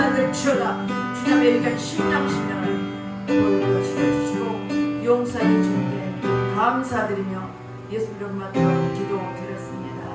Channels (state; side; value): identical; both; correlation 1.00